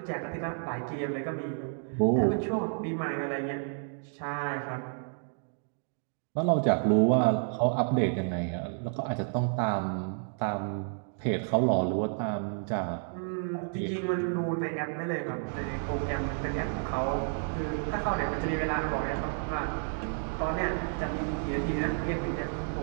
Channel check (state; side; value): silent; left; 57 dB below the other